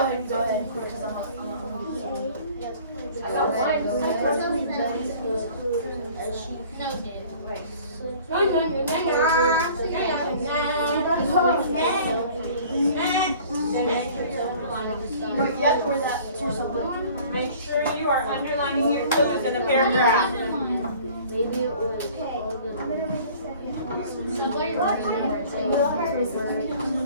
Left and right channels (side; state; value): both; inverted; correlation -0.49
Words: and go ahead because I'm I got one. Make sure you are underlining your clues in the paragraph. Maybe it was